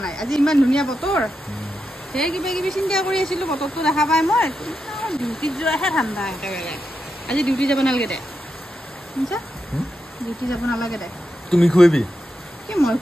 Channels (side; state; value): both; normal; correlation 0.86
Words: নাই আজি ইমান ধুনীয়া বতৰ সেই কিবা কিবি চিন্তা কৰি আছিলো বতৰটো দেখা পাই মই ডিউটিত যোৱাহে ঠাণ্ডা একেবাৰে আজি ডিউটি যাব নালাগে দে শুনছা ডিউটি যাব নালাগে দে তুমি খুৱাবি কি মই